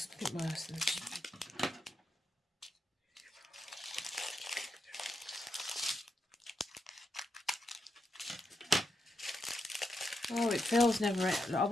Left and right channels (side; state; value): both; normal; correlation 0.83